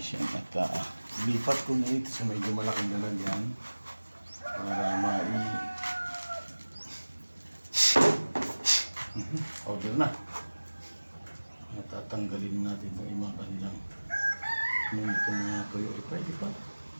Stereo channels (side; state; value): both; inverted; correlation -1.00